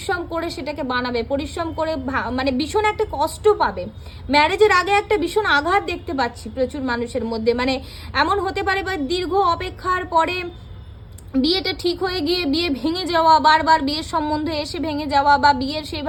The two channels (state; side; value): identical; both; correlation 1.00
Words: করে সেটাকে বানাবে, পরিশ্রম করে মানে ভীষণ একটা কষ্ট পাবে। ম্যারেজের আগে একটা ভীষণ আঘাত দেখতে পাচ্ছি প্রচুর মানুষের মধ্যে, মানে এমন হতে পারে বা দীর্ঘ অপেক্ষার পরে বিয়েটা ঠিক হয়ে গিয়ে বিয়ে ভেঙে যাওয়া, বারবার বিয়ের সম্বন্ধে এসে ভেঙে যাওয়া, বা বিয়ের